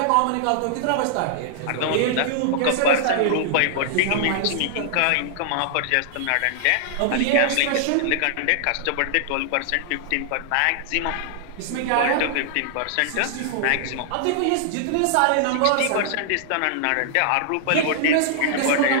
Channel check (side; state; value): both; different; correlation -0.01